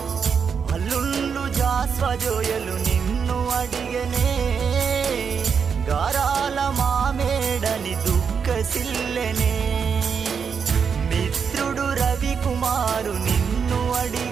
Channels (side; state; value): left; quieter; 6.4 dB